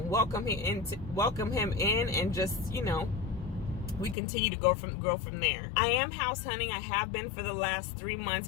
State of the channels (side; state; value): right; drops out; at 4.2 s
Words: welcome him in, and just, we continue to grow from there. I am house hunting. I have been for the last 3